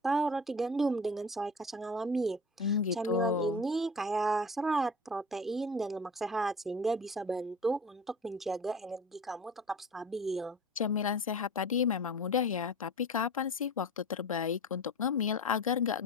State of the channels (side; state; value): both; normal; correlation 0.36